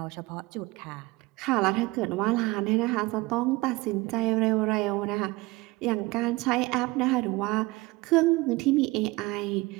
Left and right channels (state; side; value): quieter; left; 22.1 dB